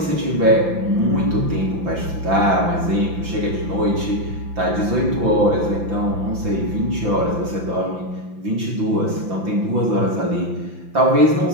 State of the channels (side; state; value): left; late; 5.9 ms